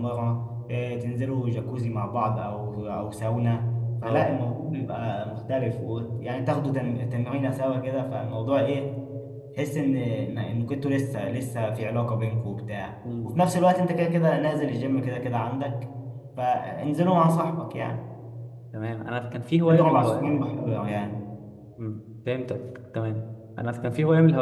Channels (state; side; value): identical; both; correlation 1.00